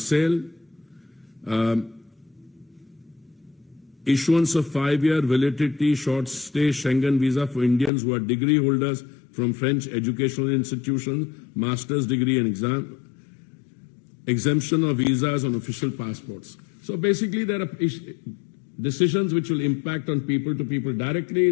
Issuance of 5-year validity short-stay Schengen visa for Indians who are degree holders from French educational institutions, master's degree and exam, exemption of visas on official passports. So basically there are decisions which will impact on people-to-people directly.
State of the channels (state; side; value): drops out; right; at 7.9 s